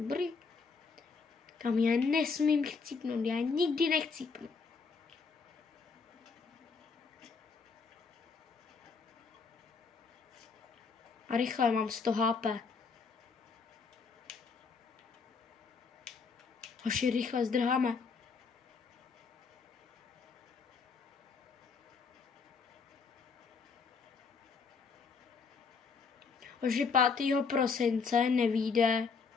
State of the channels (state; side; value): quieter; right; 5.1 dB